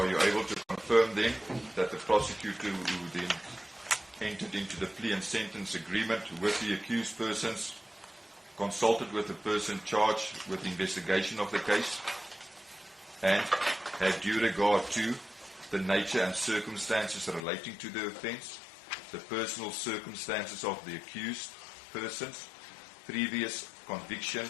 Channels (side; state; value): right; drops out; at 17.4 s